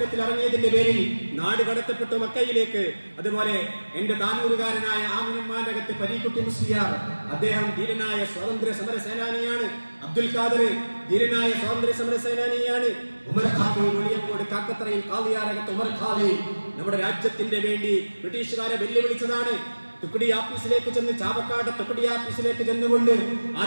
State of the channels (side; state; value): both; inverted; correlation -1.00